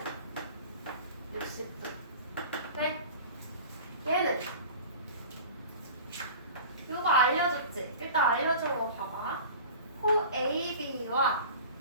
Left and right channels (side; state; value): both; inverted; correlation -0.39